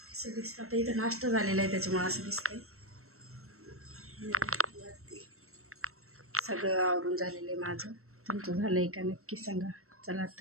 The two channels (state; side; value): late; left; 0.63 ms